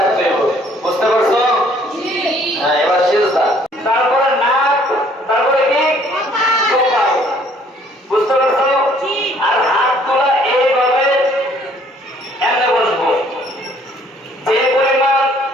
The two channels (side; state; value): both; normal; correlation 0.60